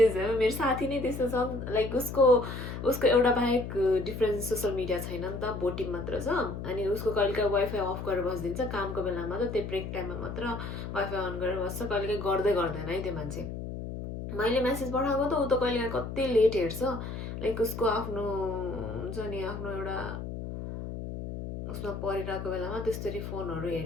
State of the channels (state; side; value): noise; left; hum, 7 dB below the sound